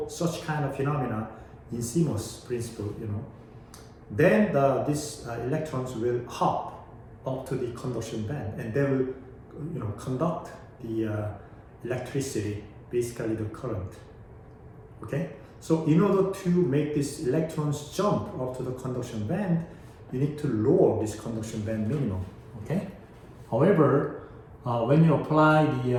such kind of phenomena in CMOS principle. Then these electrons will hop up to the conduction band, and they will, conduct the electricity, basically the current. Okay. So in order to make these electrons jump up to the conduction band, you need to lower this conduction band minimum. Okay. However, when you apply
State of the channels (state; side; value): identical; both; correlation 1.00